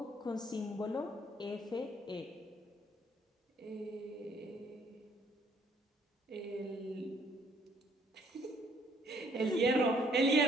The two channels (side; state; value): both; normal; correlation 0.64